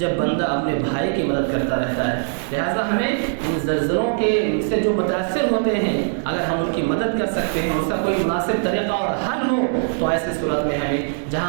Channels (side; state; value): left; silent; digital silence